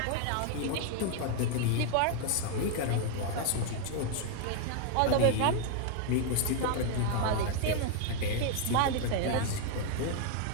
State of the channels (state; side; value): different; both; correlation 0.00